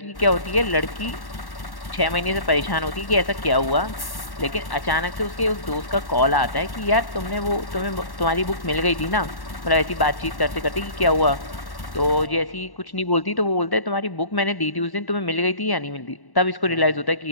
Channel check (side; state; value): right; late; 1.1 ms